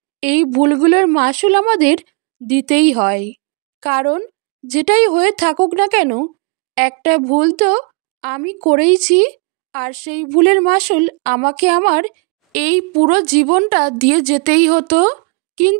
এই ভুলগুলোর মাসুল আমাদের দিতেই হয়। কারণ যেটাই হয়ে থাকুক না কেন, একটা ভুল তো আমি করেইছি, আর সেই ভুলের মাসুল আমাকে আমার এই পুরো জীবনটা দিয়ে যেতেই হতো।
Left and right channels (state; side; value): quieter; left; 34.0 dB